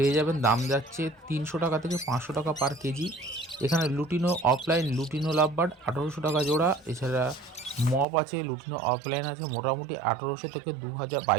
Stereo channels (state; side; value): drops out; left; at 8.1 s